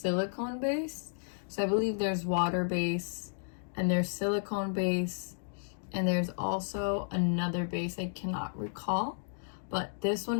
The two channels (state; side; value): silent; right; digital silence